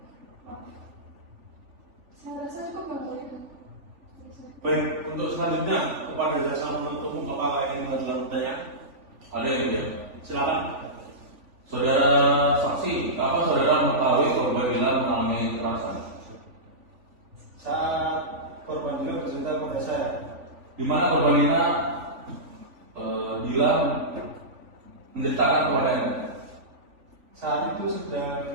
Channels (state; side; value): late; left; 3.5 ms